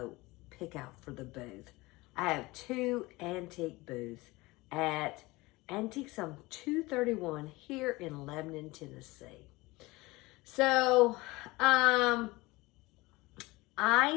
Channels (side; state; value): right; quieter; 21.7 dB